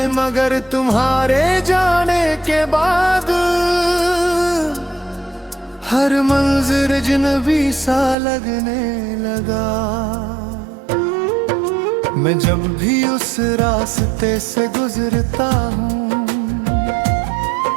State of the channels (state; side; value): drops out; left; at 8.2 s